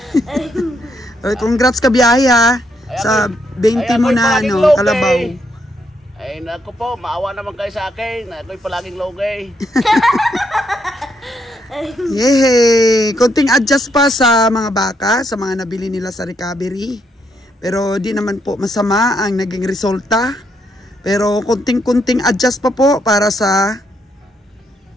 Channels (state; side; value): normal; both; correlation 0.76